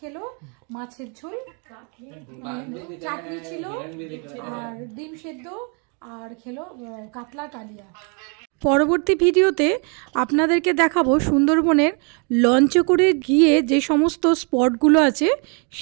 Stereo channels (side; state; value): left; quieter; 36.7 dB